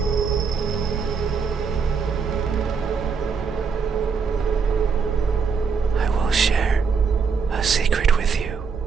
I will share a secret with you.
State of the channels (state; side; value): quieter; left; 5.6 dB